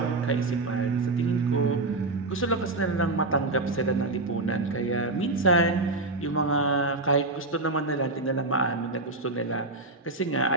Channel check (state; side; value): quieter; left; 3.0 dB